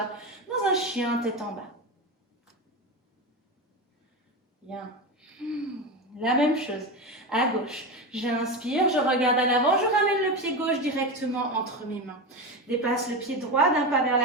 dans un chien tête en bas. Bien. La même chose. À gauche. J'inspire, je regarde à l'avant, je ramène le pied gauche directement entre mes mains. Dépasse le pied droit d'un pas vers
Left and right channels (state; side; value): normal; both; correlation 0.19